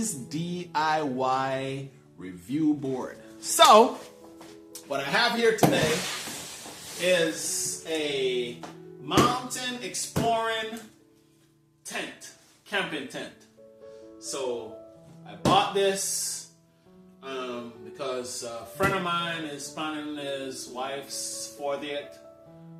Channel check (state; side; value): identical; both; correlation 1.00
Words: DIY review board. So, what I have here today is a mountain exploring tent, camping tent. So, I bought this because a friend of mine is planning his wife's 40th